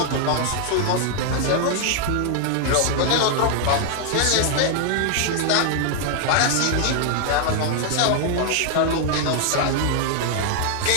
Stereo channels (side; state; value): both; different; correlation 0.00